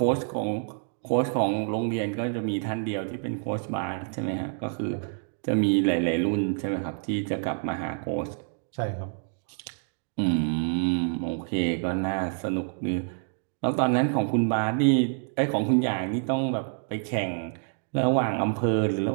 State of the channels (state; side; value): silent; left; 60 dB below the other